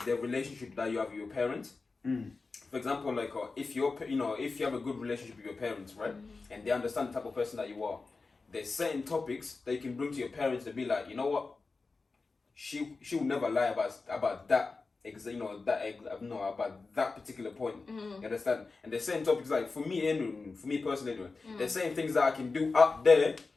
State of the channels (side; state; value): right; quieter; 4.0 dB